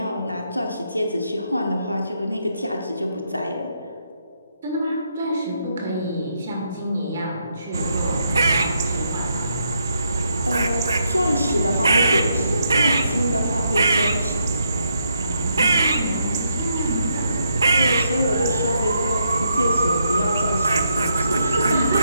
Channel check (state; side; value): inverted; both; correlation -0.78